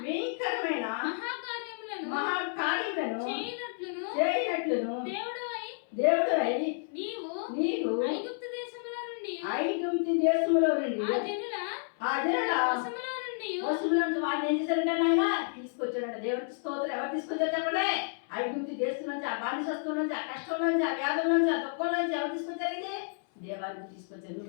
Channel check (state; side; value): silent; right; 57 dB below the other